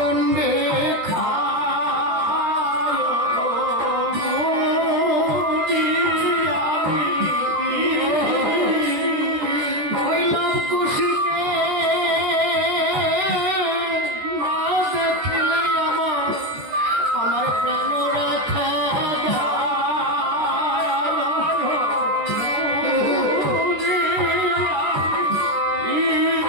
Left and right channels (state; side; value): late; left; 14 ms